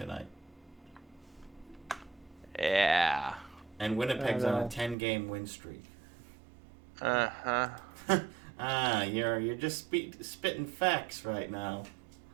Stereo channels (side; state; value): left; drops out; at 5.0 s